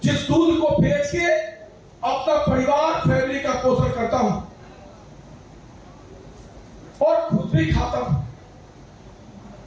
जिस दूध को बेच के अपना परिवार फैमिली का पोषण करता हूं और खुद भी खाता हूं।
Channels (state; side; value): identical; both; correlation 1.00